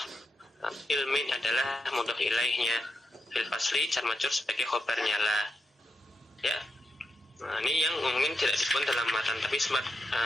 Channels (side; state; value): both; normal; correlation 0.85